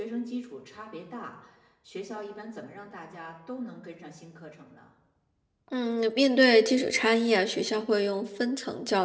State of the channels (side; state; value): both; identical; correlation 1.00